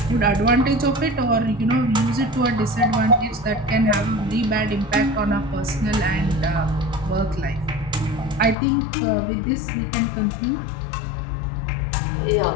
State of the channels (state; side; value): drops out; right; at 8.6 s